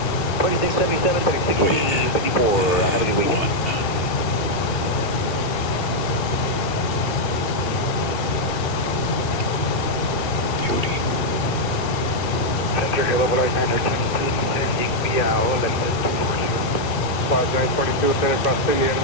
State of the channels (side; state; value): right; late; 2.8 ms